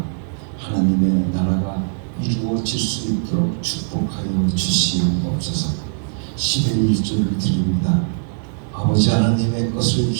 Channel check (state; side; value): silent; left; digital silence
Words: 하나님의 나라가 이루어질 수 있도록 축복하여 주시옵소서. 10의 1조를 드립니다. 아버지 하나님의 것을